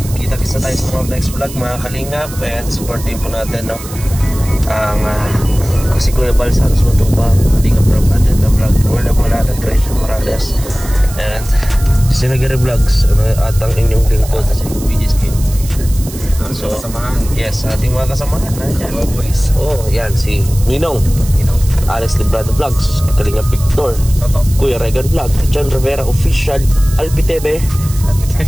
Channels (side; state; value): right; noise; hiss, 14 dB below the sound